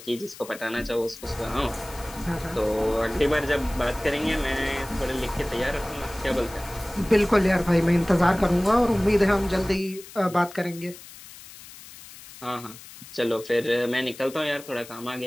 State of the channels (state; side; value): noise; left; hiss, 17 dB below the sound